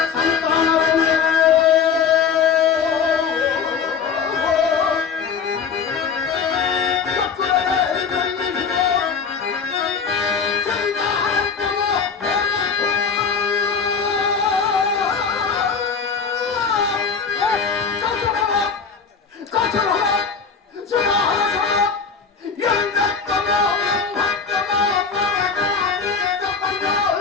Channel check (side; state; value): right; quieter; 5.9 dB